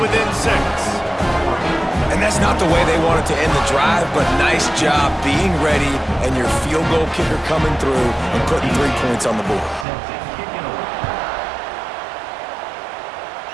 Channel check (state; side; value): drops out; left; at 9.9 s